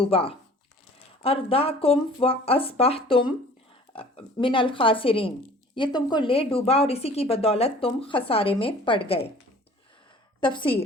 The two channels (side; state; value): both; normal; correlation 0.48